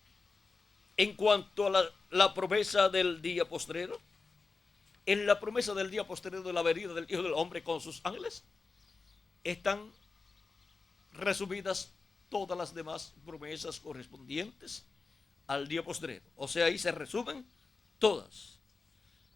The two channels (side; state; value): right; quieter; 4.2 dB